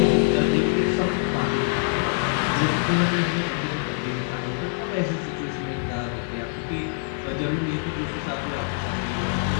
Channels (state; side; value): silent; right; digital silence